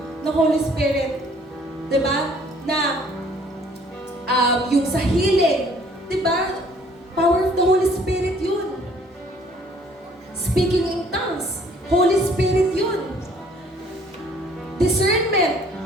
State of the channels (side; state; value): both; normal; correlation 0.58